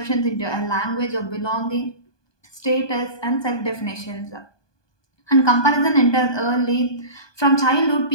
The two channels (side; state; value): right; late; 1.2 ms